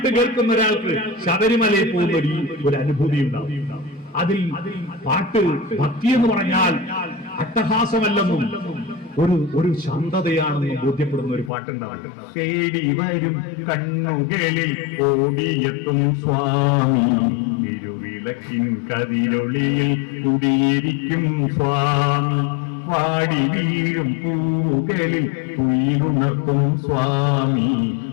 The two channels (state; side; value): drops out; right; at 11.5 s